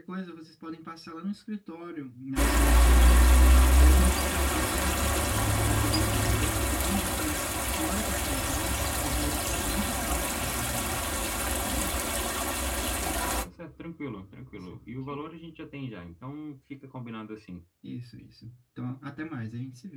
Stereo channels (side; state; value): both; identical; correlation 1.00